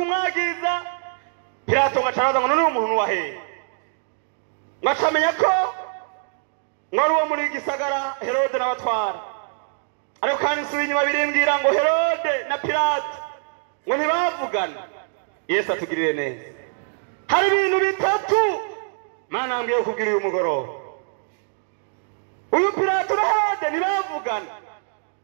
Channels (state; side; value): silent; left; digital silence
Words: Pilato ngo acaraza ngo none umuntu wahehe, ngo acamenya ko ngo ari uwo muri gisagara Herode n'abatwara. Ariko kandi nsubiye inyuma birimbwira ngo Herode na Pilato ngo ntibavugana. Yesu atugirire neza. Hari ibintu bitatu Mana ngiye kubwira uyu mugoroba. Uyu Pilato na Herode ntibavugana,